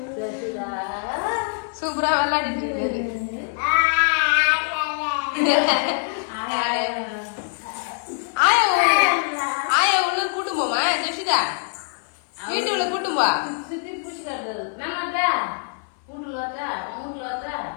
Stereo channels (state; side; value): silent; right; 58 dB below the other